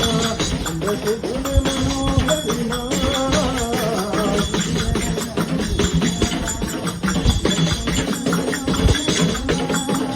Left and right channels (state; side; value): identical; both; correlation 1.00